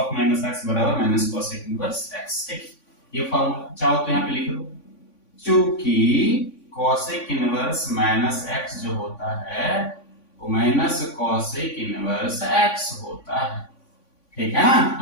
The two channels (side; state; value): right; late; 3.5 ms